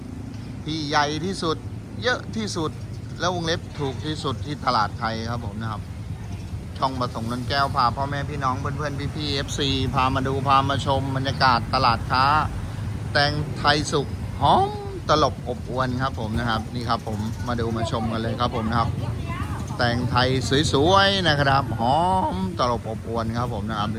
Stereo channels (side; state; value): both; identical; correlation 1.00